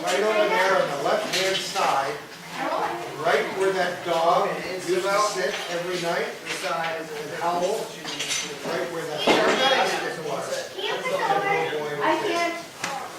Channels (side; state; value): both; identical; correlation 1.00